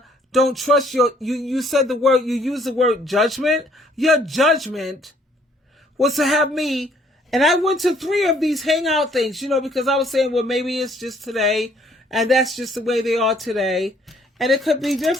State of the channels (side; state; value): both; normal; correlation 0.63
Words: don't trust you said the word, you used the word judgment. Your judgment was to have me And I went to 3 of these hangout things, because I was saying, well, maybe it's just today, and that's just the way they are today, and it could be